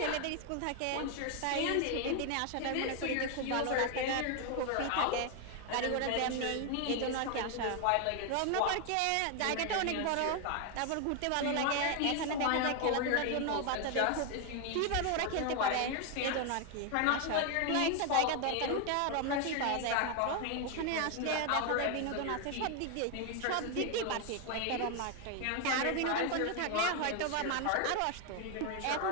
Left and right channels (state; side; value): different; both; correlation 0.01